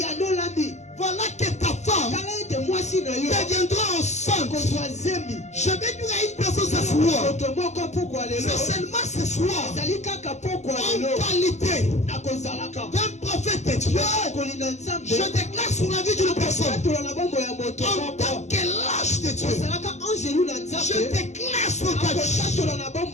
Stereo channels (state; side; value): late; right; 0.33 ms